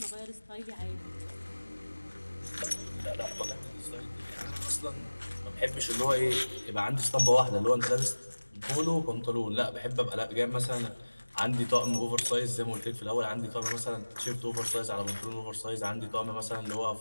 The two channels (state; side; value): inverted; both; correlation -1.00